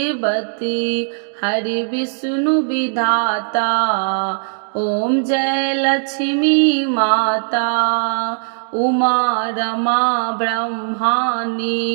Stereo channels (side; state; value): left; silent; digital silence